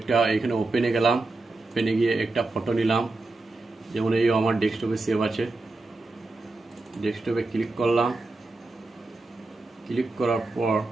এখানে ওপেনে গেলাম, ওপেনে গিয়ে একটা ফটো নিলাম, যেমন এই আমার ডেস্কটপে সেভ আছে। ডেস্কটপে ক্লিক করলাম, ক্লিক করার পর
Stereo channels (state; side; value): quieter; left; 3.2 dB